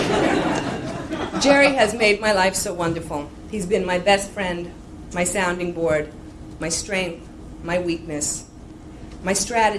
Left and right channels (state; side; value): identical; both; correlation 1.00